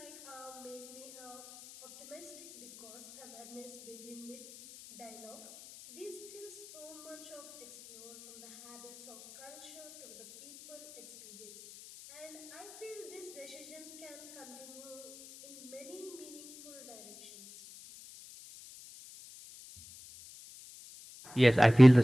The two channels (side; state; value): left; noise; hiss, 19 dB below the sound